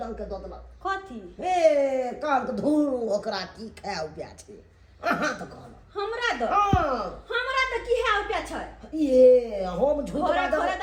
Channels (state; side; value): identical; both; correlation 1.00